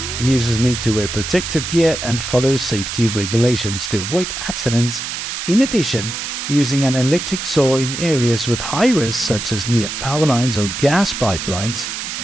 Users need to wear protective gear and follow safety regulations to avoid accidents. In addition, using an electric saw in areas with high risk, such as near power lines or gas pipelines,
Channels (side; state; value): right; noise; hiss, 5 dB below the sound